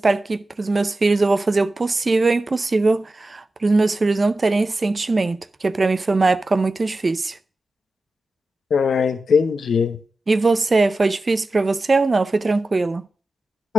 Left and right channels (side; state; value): both; normal; correlation 0.93